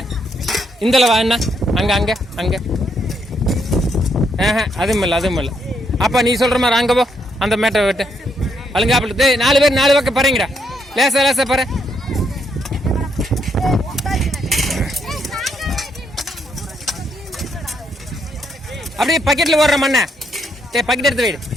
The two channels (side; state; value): both; normal; correlation 0.75